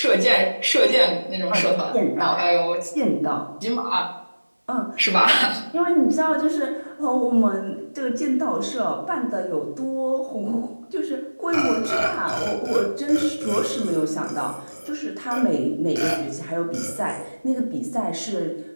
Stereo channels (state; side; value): inverted; both; correlation -1.00